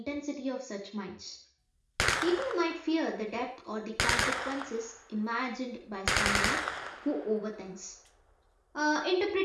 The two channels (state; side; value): identical; both; correlation 1.00